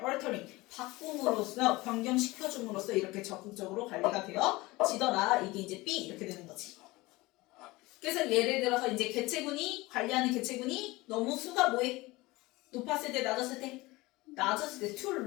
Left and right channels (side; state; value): right; quieter; 21.1 dB